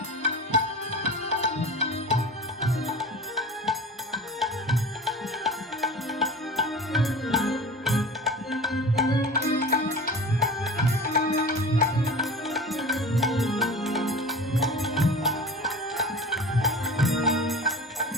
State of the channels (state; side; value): normal; both; correlation 0.36